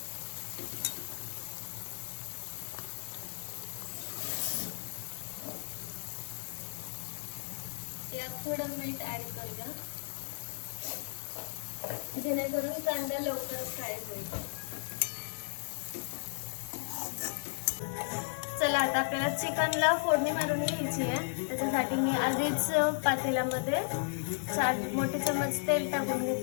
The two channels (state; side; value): silent; right; digital silence